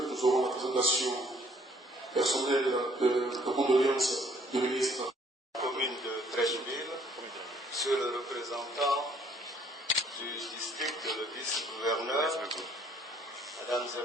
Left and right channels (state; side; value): normal; both; correlation 0.62